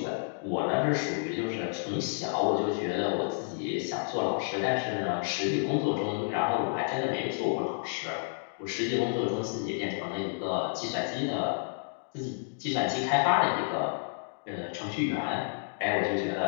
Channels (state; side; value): silent; right; digital silence